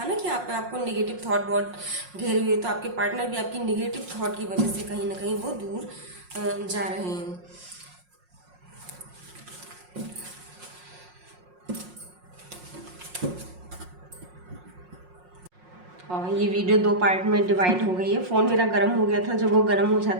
ना कि आपको नेगेटिव थॉट बहुत घेरे हुए, तो आपके पार्टनर भी आपकी नेगेटिव थॉट की वजह से कहीं ना कहीं वो दूर जा रहे हैं। और ये वीडियो 2 पार्ट में डिवाइड हो गई है। फ़ोन मेरा गर्म हो गया था, जब वो गर्म हो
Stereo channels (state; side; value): late; left; 5.5 ms